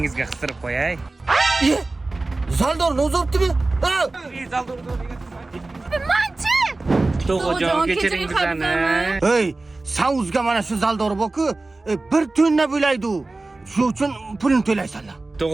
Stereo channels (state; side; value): quieter; left; 3.2 dB